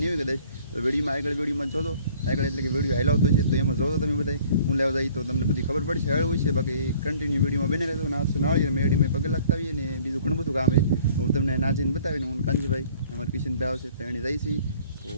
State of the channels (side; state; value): both; inverted; correlation -0.55